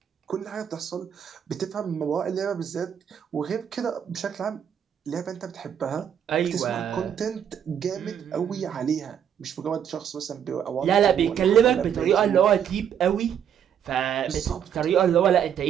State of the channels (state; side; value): quieter; left; 8.8 dB